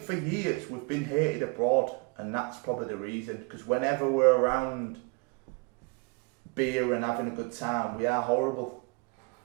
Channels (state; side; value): quieter; left; 30.7 dB